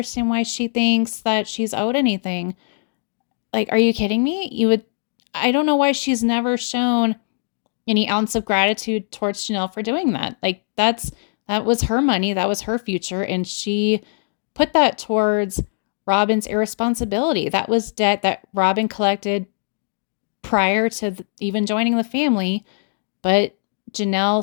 why she thinks that she's owed anything. Like, are you kidding me? I don't know why she's never shown any ounce of gratitude towards Janelle for doing that. Like, that was her money. That was her future. And she put that towards Robin's irresponsibility. That was debt that Robin collected prior to even joining the family. But Janelle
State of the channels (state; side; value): silent; right; digital silence